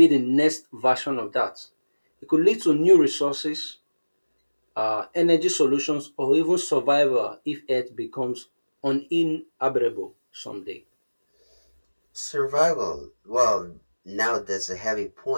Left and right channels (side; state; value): both; inverted; correlation -1.00